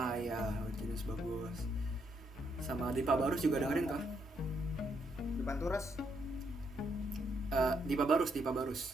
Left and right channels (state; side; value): normal; both; correlation 0.75